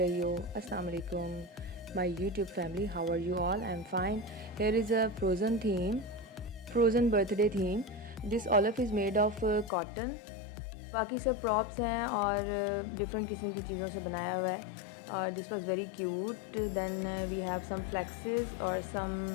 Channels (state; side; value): drops out; right; at 9.7 s